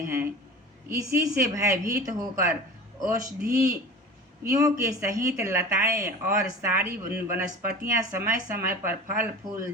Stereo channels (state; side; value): normal; both; correlation 0.36